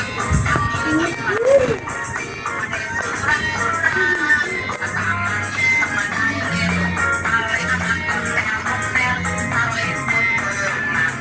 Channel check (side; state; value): both; identical; correlation 1.00